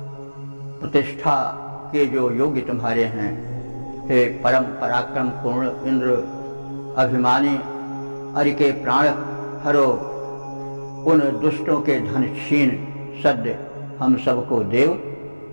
प्रतिष्ठा के जो योग्य तुम्हारे हैं। हे परम पराक्रम पूर्ण इंद्र अभिमानी अरि के प्राण हरो, उन दुष्टों के धन छीन सद्य हम सबको देव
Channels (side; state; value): both; inverted; correlation -1.00